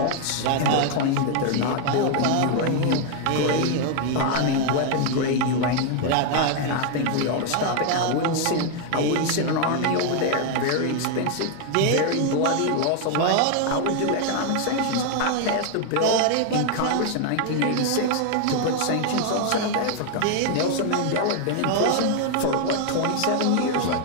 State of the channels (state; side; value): different; both; correlation 0.00